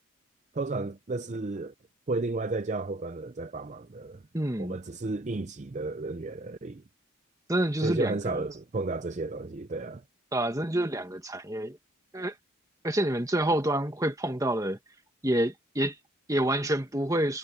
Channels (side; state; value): both; normal; correlation 0.64